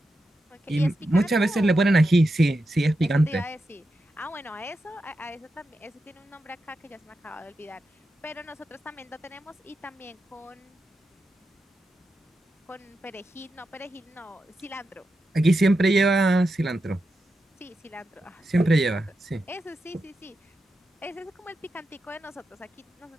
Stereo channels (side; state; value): both; normal; correlation 0.88